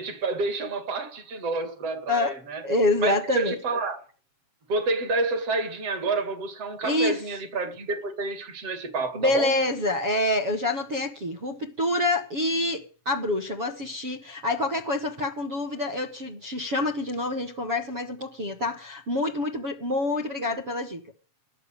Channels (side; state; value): left; late; 7.3 ms